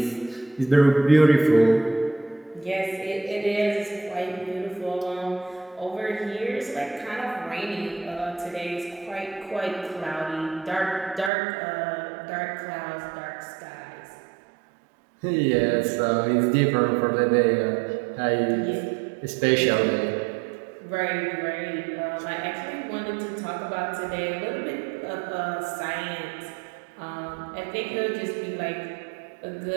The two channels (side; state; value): left; drops out; at 11.3 s